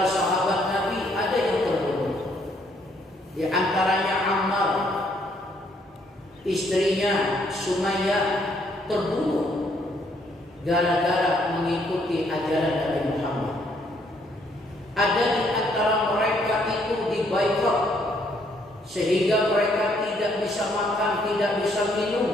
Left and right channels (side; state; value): both; normal; correlation 0.69